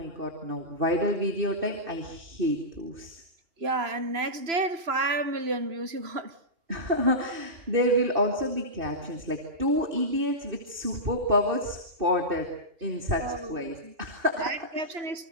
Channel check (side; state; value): left; late; 3.0 ms